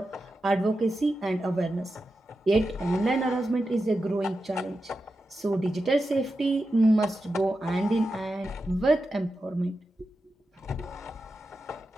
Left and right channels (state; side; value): normal; both; correlation 0.90